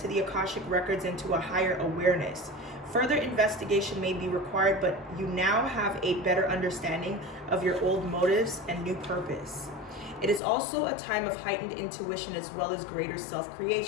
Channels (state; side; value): drops out; right; at 10.4 s